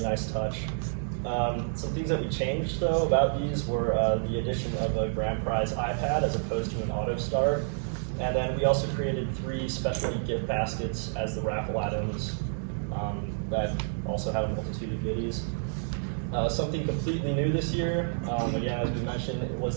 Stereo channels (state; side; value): silent; left; digital silence